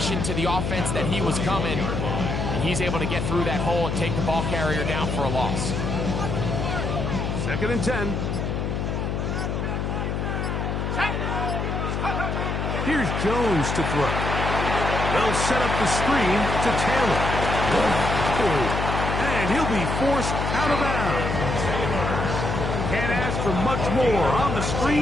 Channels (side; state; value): left; noise; hum, 1 dB below the sound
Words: to the offense that he was coming. And he's able to get through that hole and take the ball carrier down for a loss. 2nd and 10. Here's Jones to throw. They'll set up the screen to Taylor. And he'll be forced out of bounds. Can't ask for much more. On the